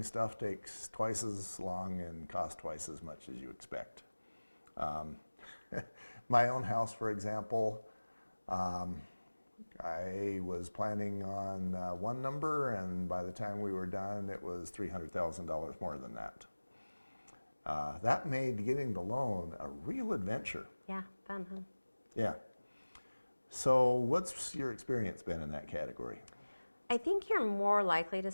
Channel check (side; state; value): both; inverted; correlation -1.00